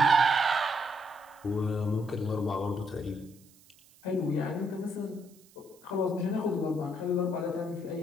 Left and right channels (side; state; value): right; noise; hiss, 27 dB below the sound